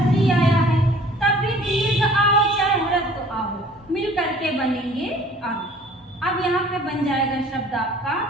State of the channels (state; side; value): normal; both; correlation 0.51